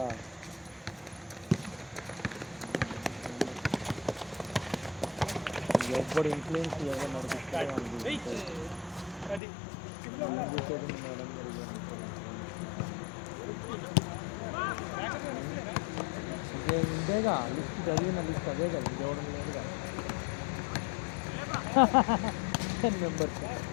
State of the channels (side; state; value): right; drops out; at 9.4 s